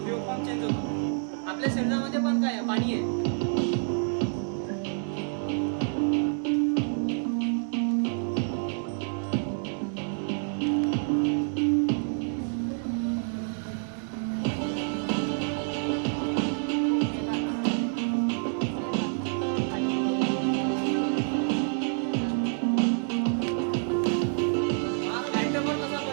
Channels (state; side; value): silent; left; 59 dB below the other